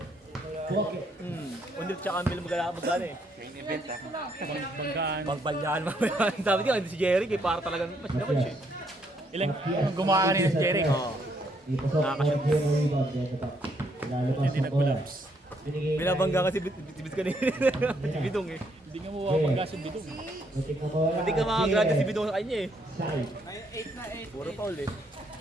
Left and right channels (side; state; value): both; normal; correlation 0.72